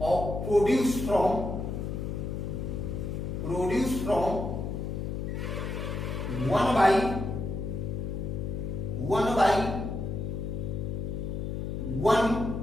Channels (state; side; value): noise; left; hum, 3 dB below the sound